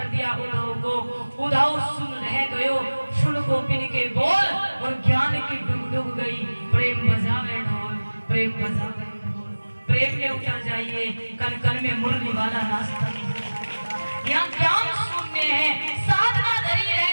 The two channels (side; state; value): both; inverted; correlation -1.00